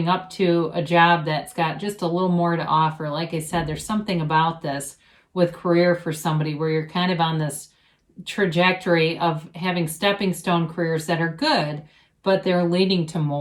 up to a job that's got just a little more to offer. Like I said, there's something about this with career for somebody where you're kind of on this trajectory of having stepping stone careers that are good, but they're leading to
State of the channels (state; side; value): identical; both; correlation 1.00